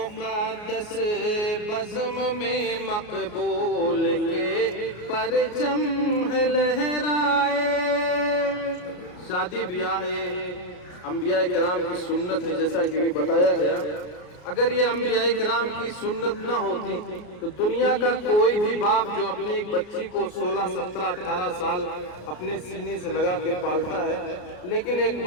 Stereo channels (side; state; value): right; late; 33 ms